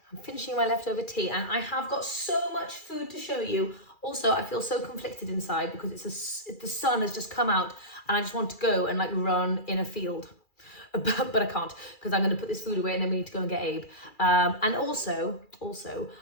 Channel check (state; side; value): late; right; 2.4 ms